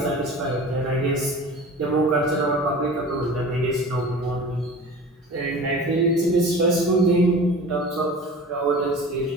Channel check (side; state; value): both; normal; correlation 0.38